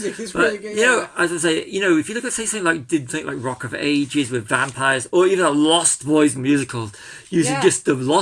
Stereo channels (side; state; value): both; identical; correlation 1.00